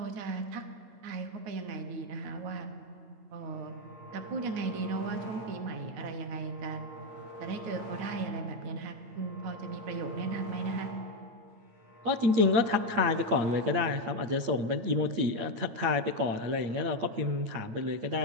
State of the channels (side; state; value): left; late; 8.7 ms